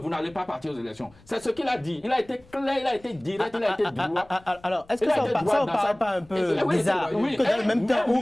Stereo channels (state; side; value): noise; left; rumble, 27 dB below the sound